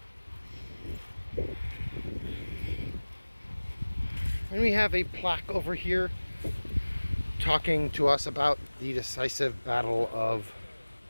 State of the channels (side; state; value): both; inverted; correlation -1.00